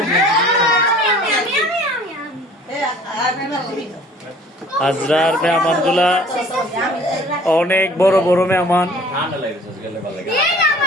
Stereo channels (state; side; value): normal; both; correlation 0.50